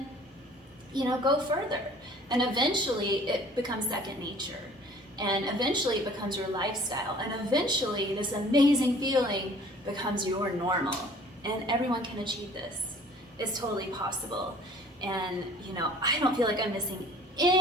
go further. And eventually it becomes second nature. And eventually it becomes your lifestyle. And eventually this amazing feeling becomes your normal. And everyone can achieve this. It's totally possible. And, I don't feel like I'm missing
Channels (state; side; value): normal; both; correlation 0.51